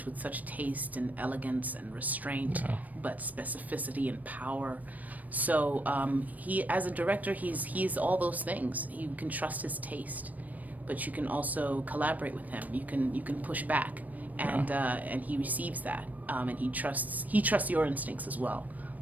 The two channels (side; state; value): left; late; 0.077 ms